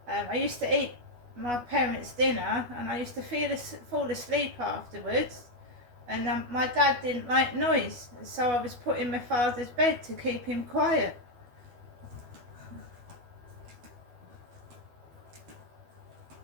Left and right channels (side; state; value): left; late; 12 ms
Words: I used to eat my parents' dinner and I used to fall asleep afterwards, and my dad didn't like noise, so I was put in my father's bed to keep him quiet.